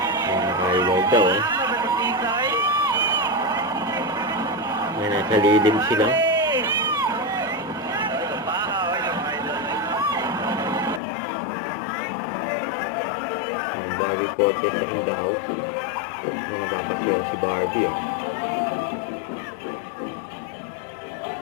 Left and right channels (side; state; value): right; drops out; at 11.0 s